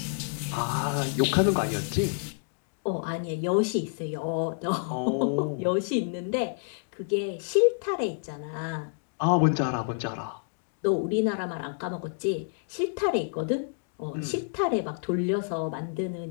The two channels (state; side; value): silent; right; digital silence